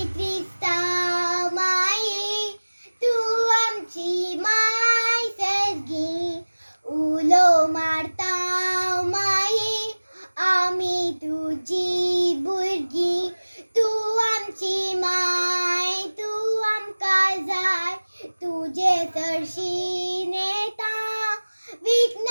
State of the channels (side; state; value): both; inverted; correlation -1.00